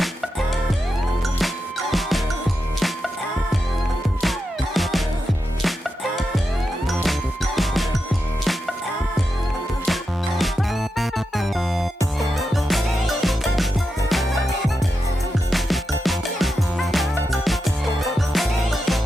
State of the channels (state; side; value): normal; both; correlation 0.88